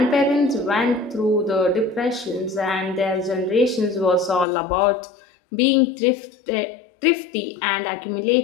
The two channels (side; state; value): right; drops out; at 4.5 s